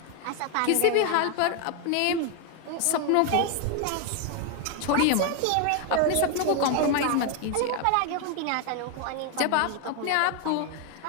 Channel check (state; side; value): different; both; correlation 0.01